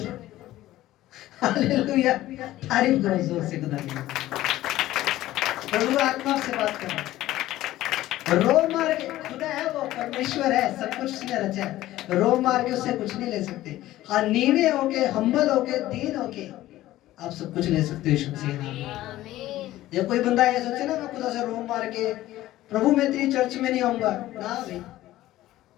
हालेलुया, तारीफ करो जोर से खुदा की। प्रभु आत्मा से बात करो। रोम मार के, खुदा है वो, परमेश्वर है, सब कुछ उसने रचा है। रोम मार के उससे कुछ नहीं ले सकते। हाँ नीवे होके, हम्बल होके, दीन होके आप सब कुछ ले सकते हो यीशु मसीह के नाम में। जब कोई बंदा ये सोचे ना मैं खुदा से रोम मार के प्रभु मैं तेरी चर्च में नहीं आऊंगा, ना भाई।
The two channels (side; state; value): right; quieter; 15.3 dB